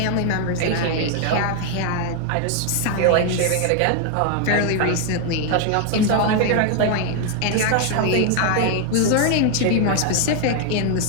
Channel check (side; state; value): both; different; correlation 0.00